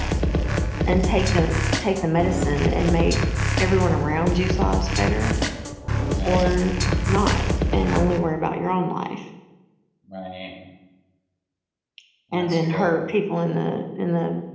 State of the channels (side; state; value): both; identical; correlation 1.00